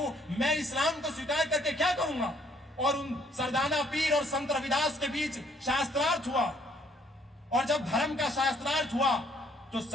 मैं इस्लाम को स्वीकार करके क्या करूंगा। और उन सरदाना पीर और संत रविदास के बीच शास्त्रार्थ हुआ। और जब धर्म का शास्त्रार्थ हुआ तो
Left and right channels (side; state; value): both; normal; correlation 0.65